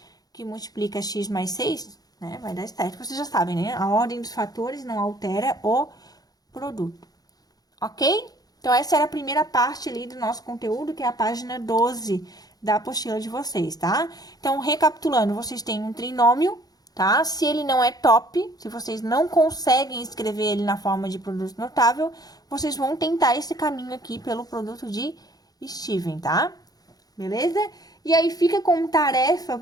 que multiplica x mais 6, né? Vai dar 7. Vocês já sabem, né? A ordem dos fatores não altera o produto. Ok? Então, essa era a primeira parte ali do nosso conteúdo, que é a página 12 da apostila de vocês, tá? Então, recapitulando, vocês têm um trinômio, tá? Se ele não é top, se vocês não conseguem escrever ele na forma de produto notável, vocês vão tentar esse caminho aqui pelo produto de Steven, tá? Beleza? E aí, fica como tarefa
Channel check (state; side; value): late; right; 0.19 ms